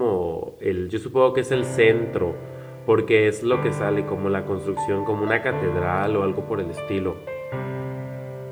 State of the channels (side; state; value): both; identical; correlation 1.00